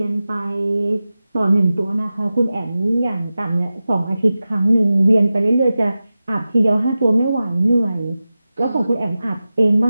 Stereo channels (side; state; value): both; inverted; correlation -0.95